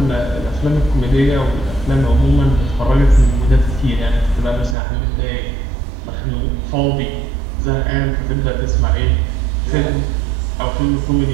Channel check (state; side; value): drops out; left; at 4.8 s